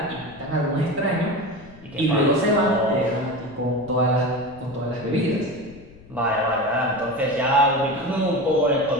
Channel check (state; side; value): noise; left; rumble, 22 dB below the sound